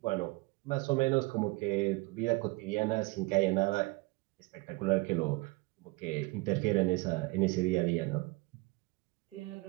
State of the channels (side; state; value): left; quieter; 24.4 dB